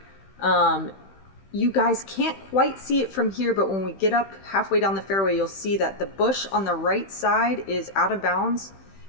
You guys can't quite see it from here, but when we get up halfway down the fairway, you'll see that the bush on the right side is out of bounds,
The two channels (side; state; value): right; late; 15 ms